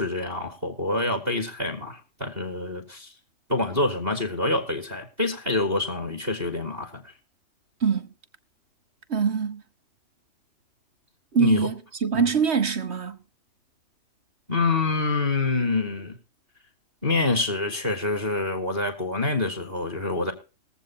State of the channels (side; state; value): left; late; 2.8 ms